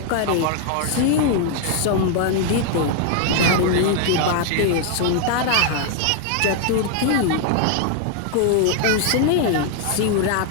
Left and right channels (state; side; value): different; both; correlation 0.00